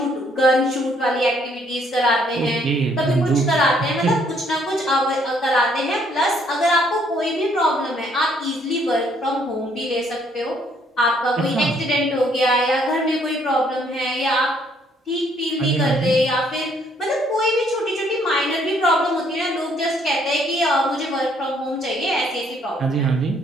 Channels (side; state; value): both; normal; correlation 0.66